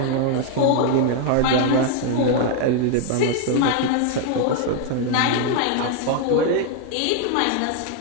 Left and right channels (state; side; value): different; both; correlation 0.00